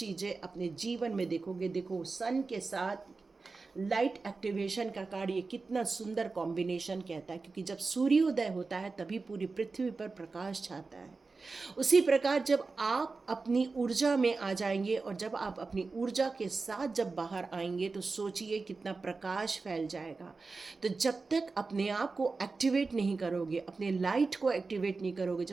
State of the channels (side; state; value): left; quieter; 4.1 dB